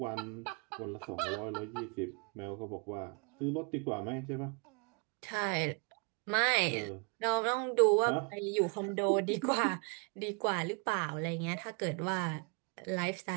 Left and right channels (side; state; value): left; quieter; 35.1 dB